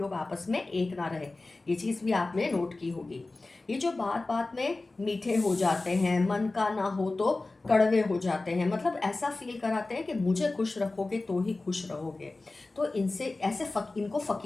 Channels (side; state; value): right; quieter; 3.2 dB